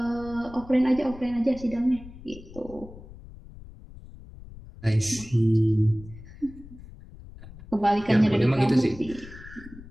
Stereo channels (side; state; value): left; noise; rumble, 17 dB below the sound